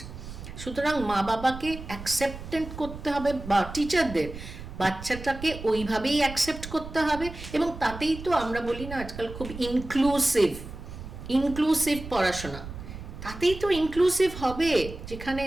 সুতরাং মা বাবাকে অ্যাকসেপ্টেন্ট করতে হবে, বা টিচারদের বাচ্চাটাকে ওইভাবেই অ্যাকসেপ্ট করতে হবে। এবং তাতেই তো আমরা বলি না আজকাল খুব ইনক্লুসিভ পড়াশোনা, তাতেই তো ইনক্লুসিভ হবে। যেখানে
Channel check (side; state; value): right; noise; rumble, 12 dB below the sound